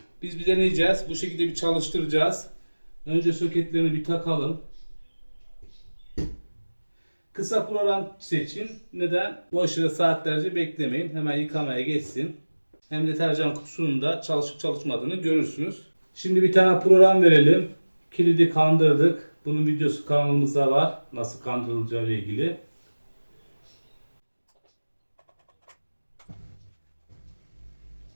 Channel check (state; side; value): inverted; both; correlation -1.00